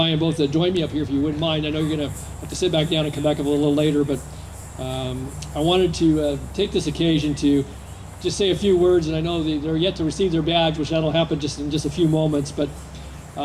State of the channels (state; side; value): identical; both; correlation 1.00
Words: both join me up here if you wouldn't mind. I know you're going to have to sit back down and come back up a little later, but I wanted to take this occasion to just say a few words, and I know they're yet to receive their badge, which that'll happen just in just a few moments, but